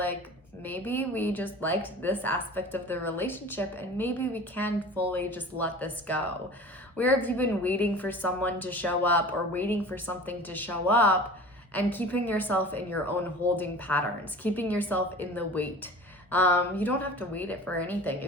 maybe we just liked this aspect of the relationship and maybe we can fully just let this go. Where have you been waiting for someone to show up or waiting for something to show up and keeping yourself in your own holding patterns, keeping yourself in the wait? You don't have to wait it for anything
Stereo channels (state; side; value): normal; both; correlation 0.39